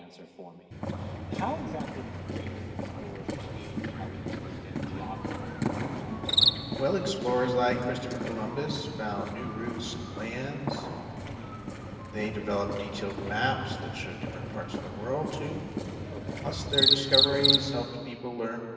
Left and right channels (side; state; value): both; identical; correlation 1.00